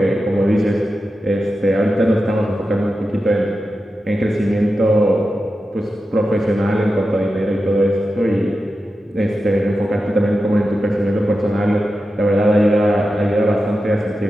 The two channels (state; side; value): normal; both; correlation 0.91